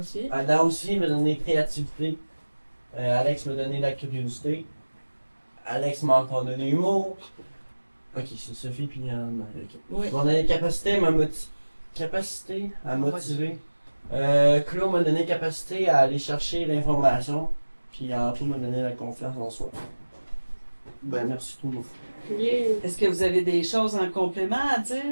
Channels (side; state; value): both; inverted; correlation -1.00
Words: Ada aussi m'a donné créativité. Alex m'a donné la curiosité. Alex m'a encore donné l'humour. Ok, c'est Sophie puis Anne. Okay. Oui. On a les capacités à motiver. Claude m'a donné capacité à aller chercher l'information. Puis Antoine m'a donné la confiance en soi. Ben merci tout le monde. Est-ce que vous avez des choses en complément à